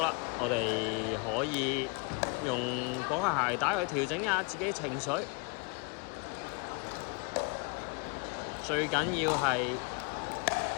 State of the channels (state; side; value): quieter; right; 31.0 dB